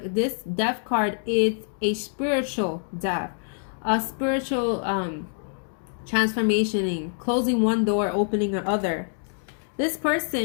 this death card is a spiritual death, a spiritual transformation, closing one door, opening another. This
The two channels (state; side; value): silent; right; 61 dB below the other